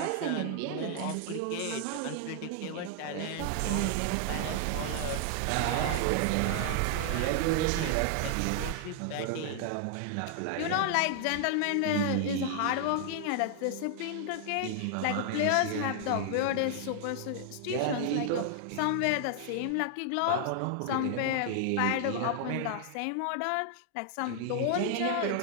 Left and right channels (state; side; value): different; both; correlation 0.00